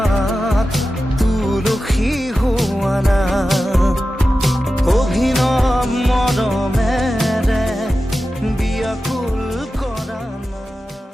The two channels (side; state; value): both; normal; correlation 0.93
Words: তুলসী হোৱা না অভিনৱ মৰমেৰে বিয়াকুল কৰা না